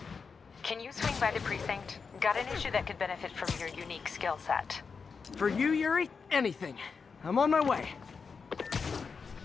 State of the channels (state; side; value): quieter; right; 5.4 dB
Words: Can you swing by the precinct? Got an issue that could benefit from your unique skill set. For you, Yuri, anything. I'm on my way.